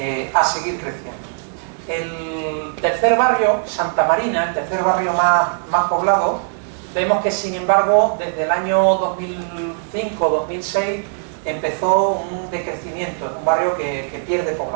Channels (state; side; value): silent; left; 66 dB below the other